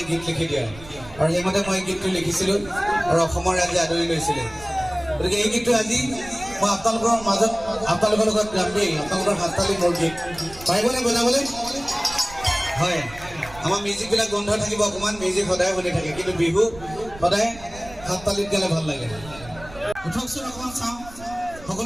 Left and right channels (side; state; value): right; noise; rumble, 17 dB below the sound